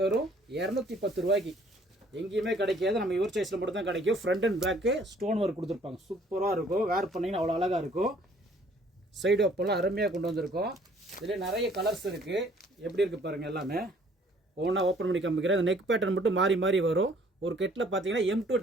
வெறும் 210 ரூபாய்க்கு. எங்கேயுமே கிடைக்காது, நம்ம யுவர் சாய்ஸில் மட்டும் தான் கிடைக்கும். Front and back stone work கொடுத்துருப்பாங்க, சூப்பராக இருக்கும். வேர் பண்ணிங்கன்னா அவ்வளோ அழகாக இருக்கும். சைடு ஓப்பெல்லாம் அருமையாக கொண்டு வந்திருக்கோம். இதில் நிறைய கலர்ஸ் இருக்குது. எப்படி இருக்குது பாருங்கள், எல்லாமே ஒவ்வொன்றா ஓப்பன் பண்ணி காமிக்கிறேன். இந்த நெக் பேட்டர்ன் மட்டும் மாறி மாறி வரும். ஒரு கெட்டில் பார்த்தீங்கன்னா M2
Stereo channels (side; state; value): both; normal; correlation 0.59